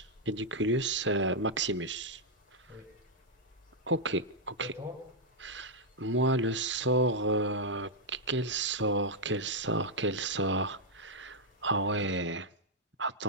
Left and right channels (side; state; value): both; normal; correlation -0.04